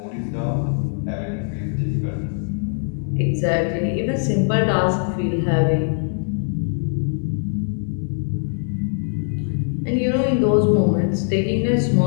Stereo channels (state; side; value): silent; right; 64 dB below the other